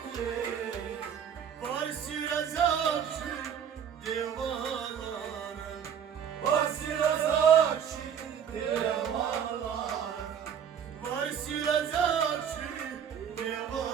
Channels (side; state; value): left; quieter; 8.2 dB